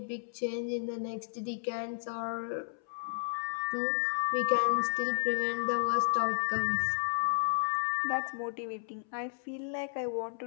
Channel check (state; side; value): silent; right; 56 dB below the other